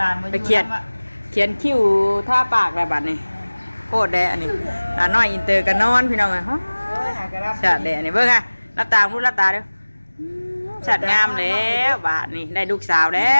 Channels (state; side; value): inverted; both; correlation -1.00